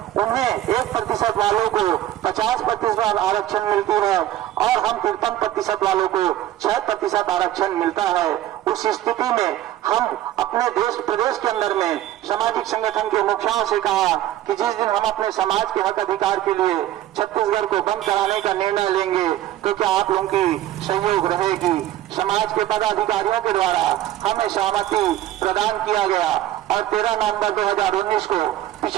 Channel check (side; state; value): left; quieter; 13.5 dB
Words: उन्हें 1% वालों को 50% आरक्षण मिलती है और हम 53% वालों को 6% आरक्षण मिलता है। उस स्थिति में हम अपने प्रदेश के अंदर में सामाजिक संगठन के मुखियाओं से कहा कि जिस दिन हम अपने समाज के हक अधिकार के लिए छत्तीसगढ़ को बंद कराने का निर्णय लेंगे तो क्या आप लोगों की सहयोग रहेगी। समाज के पदाधिकारियों के द्वारा हमें सहमति प्रदान किया गया और 13 नवंबर 2019 को